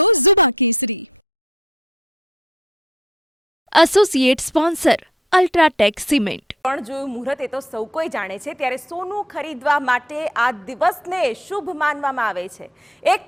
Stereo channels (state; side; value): normal; both; correlation 0.58